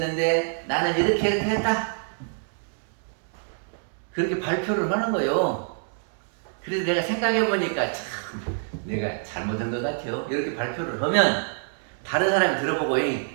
나는 이렇게 했다, 그렇게 발표를 하는 거예요. 그래서 내가 생각해보니까 참 내가 잘못한 것 같아요. 이렇게 발표를 하면 다른 사람이 들어보고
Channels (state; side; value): silent; left; digital silence